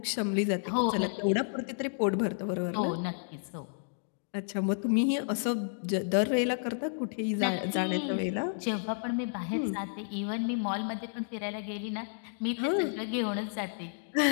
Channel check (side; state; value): right; silent; digital silence